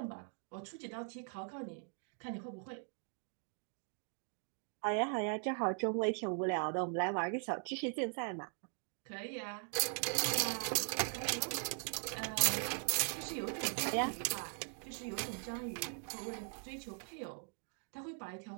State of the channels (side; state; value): left; silent; 51 dB below the other